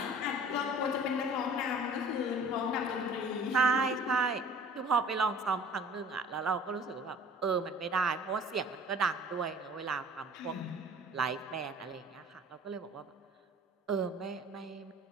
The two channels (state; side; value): normal; both; correlation 0.47